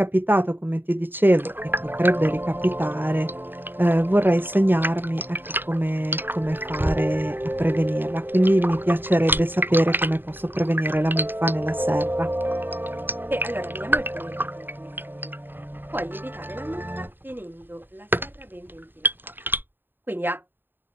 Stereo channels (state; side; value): late; left; 0.096 ms